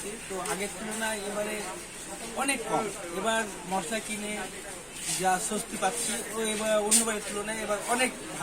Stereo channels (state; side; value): identical; both; correlation 1.00